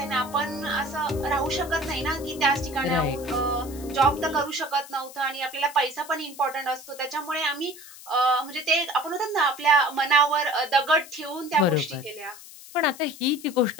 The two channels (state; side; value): noise; left; hiss, 17 dB below the sound